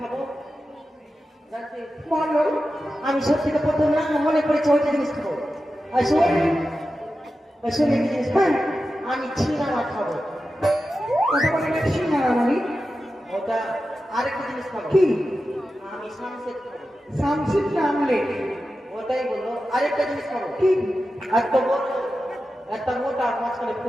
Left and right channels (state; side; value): normal; both; correlation 0.92